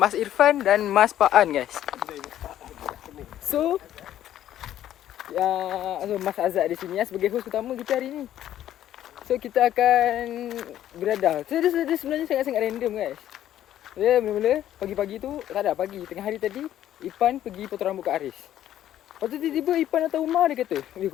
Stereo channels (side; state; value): right; quieter; 11.9 dB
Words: Irfan dan Mas Paan guys. So, Mas Azad di sini sebagai host utama kita hari ini. So, kita akan beriadah. So, dia sebenarnya sangat-sangat random guys. Dia mula-mula pagi-pagi tu, tak ada pagi, tengah hari tadi Ipan pergi potong rambut kat Haris. Lepas tu tiba-tiba Ipan datang rumah, dia kata,